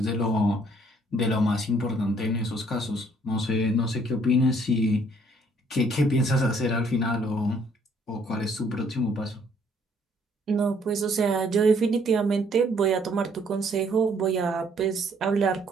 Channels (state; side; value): normal; both; correlation 0.64